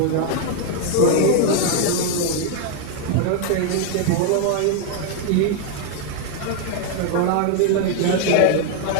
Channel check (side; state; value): both; different; correlation 0.00